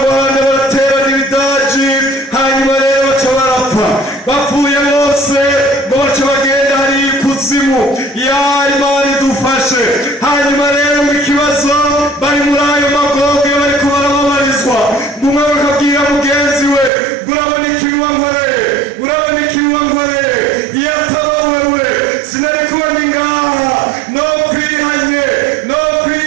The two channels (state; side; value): drops out; left; at 16.9 s